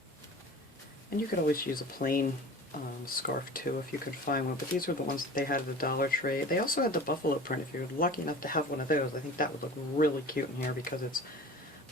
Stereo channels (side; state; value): both; normal; correlation 0.39